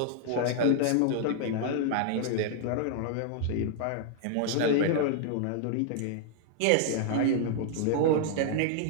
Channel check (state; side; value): different; both; correlation -0.01